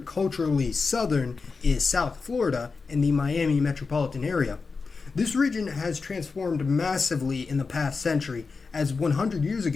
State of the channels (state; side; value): quieter; right; 4.6 dB